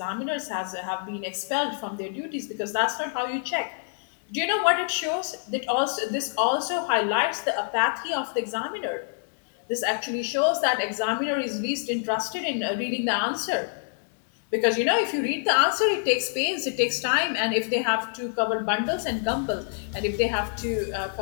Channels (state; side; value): silent; right; digital silence